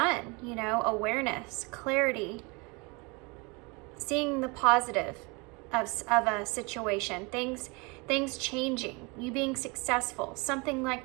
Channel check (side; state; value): left; quieter; 28.5 dB